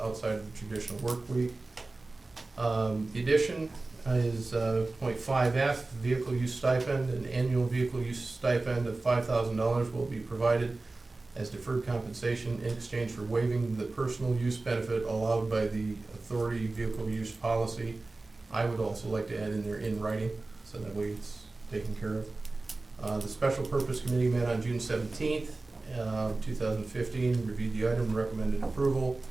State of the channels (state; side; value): quieter; left; 3.3 dB